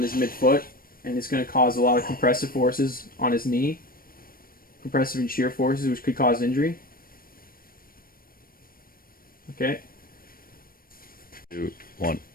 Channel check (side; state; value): right; late; 0.42 ms